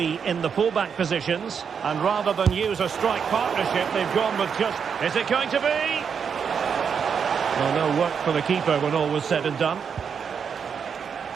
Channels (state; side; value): quieter; left; 6.8 dB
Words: in the fullback positions. And rather than use a strike partnership, they've gone with just... Is it going to be? Well, no work for the keeper when all was said and done.